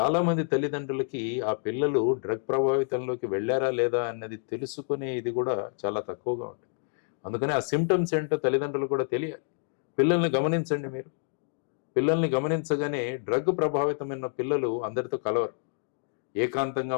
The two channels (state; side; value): silent; right; digital silence